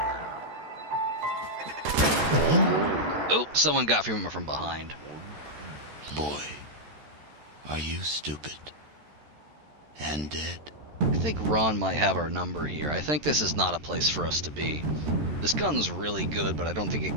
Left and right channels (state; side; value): late; left; 13 ms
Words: Oh, someone got from behind. Boy, are you stupid and dead? I think Ron might have our number here. I think this is not a place for us to be. This gun's really good, but I don't think it